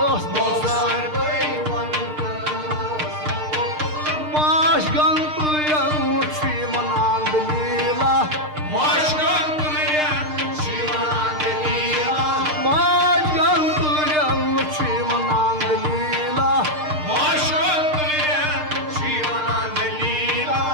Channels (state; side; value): late; left; 6.6 ms